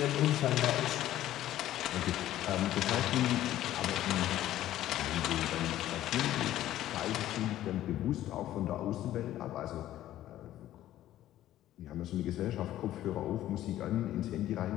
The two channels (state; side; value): quieter; right; 13.4 dB